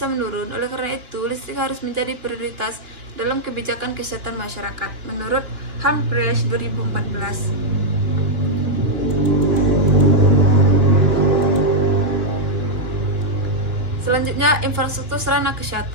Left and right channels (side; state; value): left; late; 2.8 ms